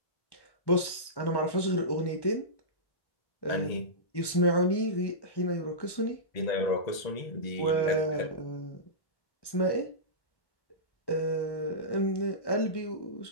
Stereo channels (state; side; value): late; right; 1.1 ms